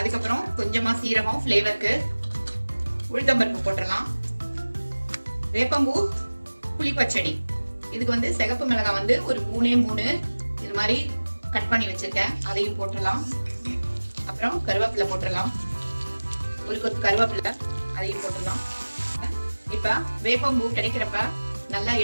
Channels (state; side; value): inverted; both; correlation -1.00